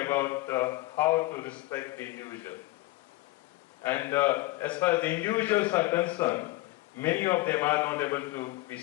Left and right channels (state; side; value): quieter; right; 19.7 dB